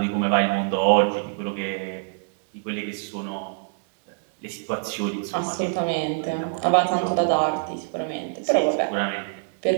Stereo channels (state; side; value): silent; left; digital silence